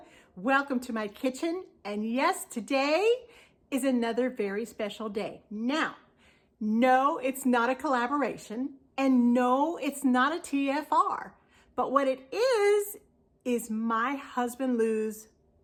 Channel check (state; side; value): identical; both; correlation 1.00